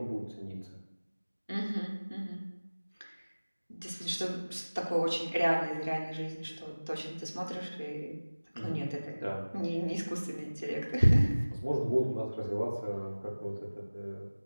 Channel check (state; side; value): inverted; both; correlation -1.00